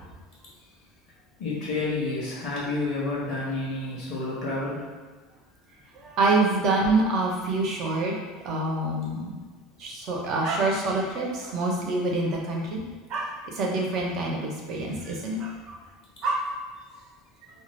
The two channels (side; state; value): both; normal; correlation 0.37